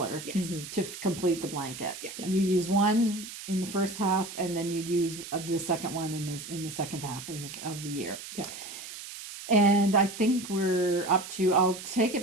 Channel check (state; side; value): noise; right; hiss, 11 dB below the sound